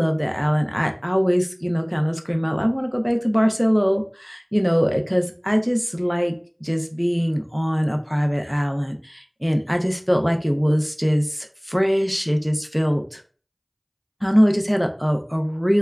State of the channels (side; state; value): both; identical; correlation 1.00